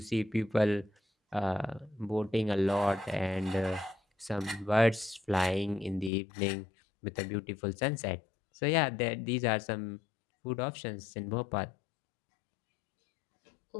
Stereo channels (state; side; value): drops out; right; at 6.1 s